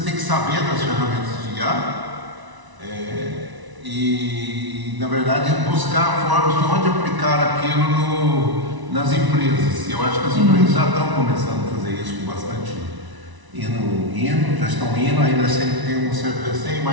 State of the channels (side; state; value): left; late; 1.0 ms